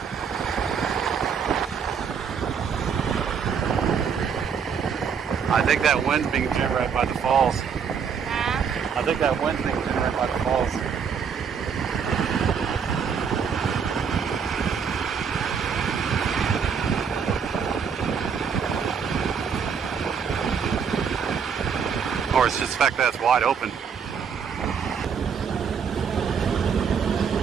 I think that wind's being generated by the falls. I think that wind's being generated by the falls. Or it's just the fact that it's wide open.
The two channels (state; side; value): quieter; left; 6.7 dB